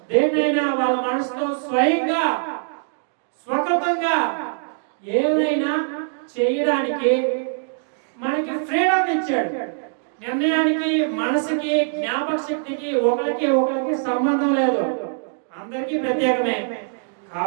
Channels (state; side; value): silent; left; digital silence